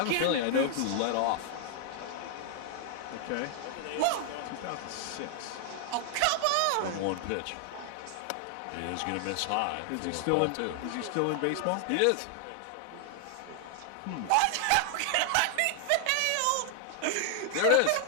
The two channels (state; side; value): different; both; correlation 0.00